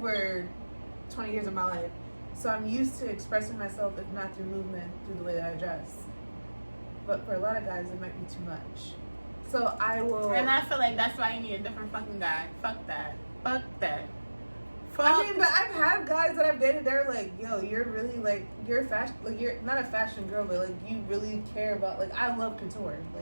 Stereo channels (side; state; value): both; inverted; correlation -1.00